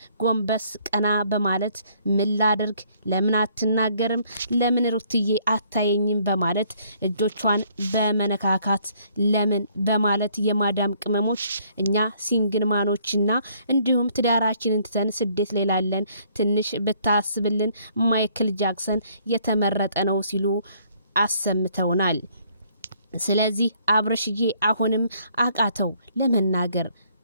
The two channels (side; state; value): both; inverted; correlation -0.64